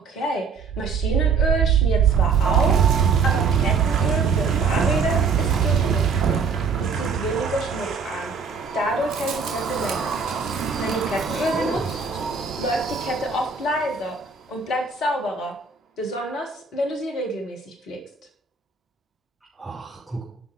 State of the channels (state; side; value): quieter; left; 5.1 dB